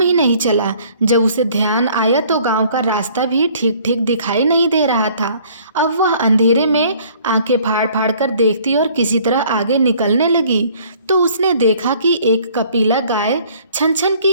ही नहीं चला। जब उसे ध्यान आया तो गांव का रास्ता भी ठीक ठीक दिखाई नहीं दे रहा था। अब वह अंधेरे में आंखें फाड़ फाड़ कर देखती और किसी तरह आगे निकलने लगी तो उसने देखा कि एक कपिला गाय छन छन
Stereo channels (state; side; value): inverted; both; correlation -0.56